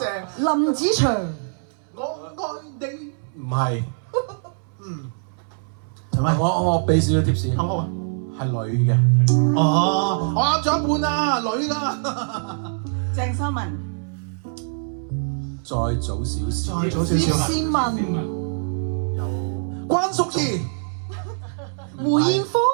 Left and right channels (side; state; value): left; silent; 63 dB below the other